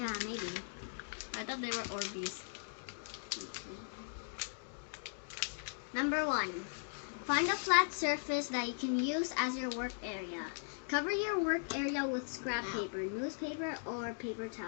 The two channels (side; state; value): right; silent; digital silence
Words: maybe. I thought they were Orbeez. Number 1. Find a flat surface that you can use as your work area. Cover your work area with scrap paper, newspaper, or paper